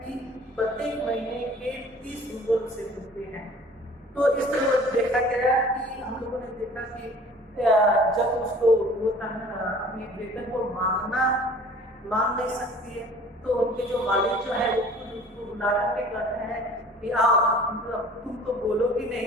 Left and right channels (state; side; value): normal; both; correlation 0.48